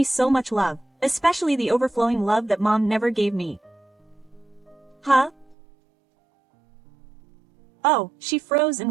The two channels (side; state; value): left; drops out; at 5.6 s